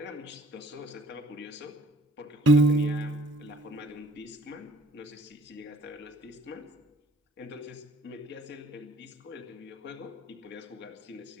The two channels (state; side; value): normal; both; correlation 0.54